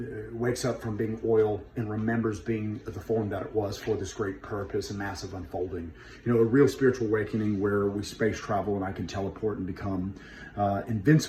wakes up from being oil and remembers being the form that it was for this great purpose and massive unfolding. A real spiritual awakening where we space travel and I can teleport and become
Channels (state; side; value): identical; both; correlation 1.00